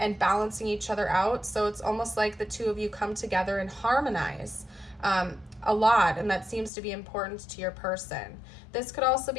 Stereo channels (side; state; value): right; drops out; at 6.7 s